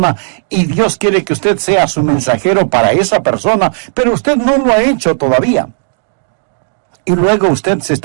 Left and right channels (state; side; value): silent; left; 72 dB below the other